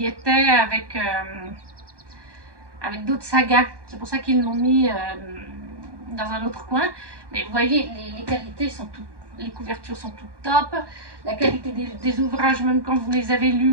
était avec d'autres sagas. C'est pour ça qu'ils l'ont mis dans un autre coin. Mais vous voyez, les qualités sont toutes, les couvertures sont toutes top. La qualité des ouvrages, même quand vous les avez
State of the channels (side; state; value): left; late; 1.2 ms